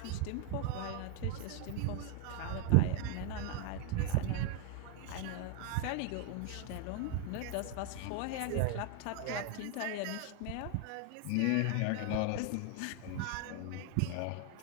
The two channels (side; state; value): both; different; correlation 0.00